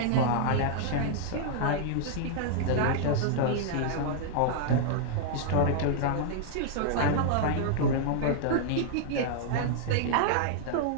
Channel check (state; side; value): different; both; correlation -0.01